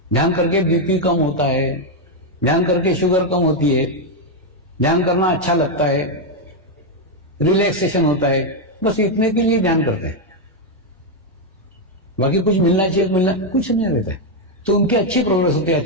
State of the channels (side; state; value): both; normal; correlation 0.02